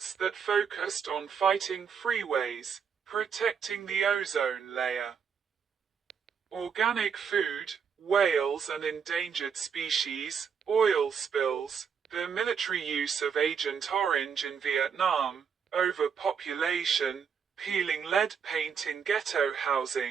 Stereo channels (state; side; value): quieter; left; 6.8 dB